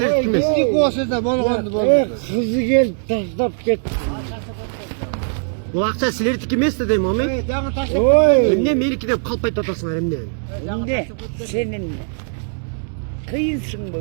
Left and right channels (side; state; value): left; silent; digital silence